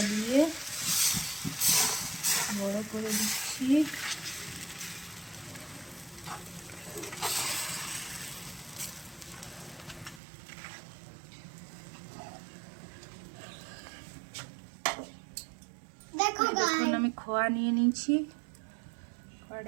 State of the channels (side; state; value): left; drops out; at 10.2 s